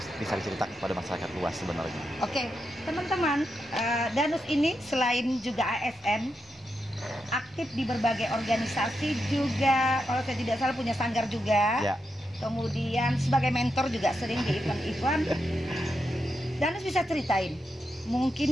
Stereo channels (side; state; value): both; normal; correlation 0.85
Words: bisa diceritakan kepada masyarakat luas sebenarnya. Oke, teman-teman, Danus ini selain juga ASN, aktif di berbagai organisasi juga, kalau saya tidak salah punya sanggar juga. Kemudian sebagai mentor juga sering di event-event. Danus bisa ceritain,